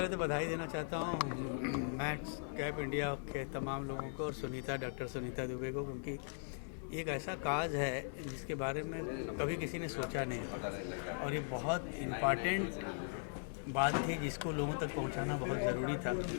तो बधाई देना चाहता हूँ मैड्स कैप इंडिया के तमाम लोगों को और डॉक्टर सुनीता दुबे को, क्योंकि एक ऐसा काज है जिसके बारे में कभी किसी ने सोचा नहीं और ये बहुत इम्पॉर्टेंट बात थी जिसको लोगों तक पहुंचाना बहुत ज़रूरी था।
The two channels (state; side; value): silent; right; digital silence